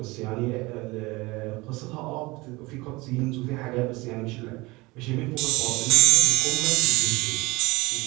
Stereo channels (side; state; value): left; quieter; 22.7 dB